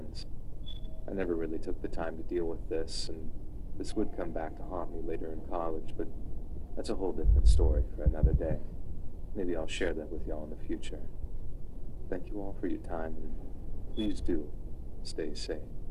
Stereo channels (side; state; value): both; identical; correlation 1.00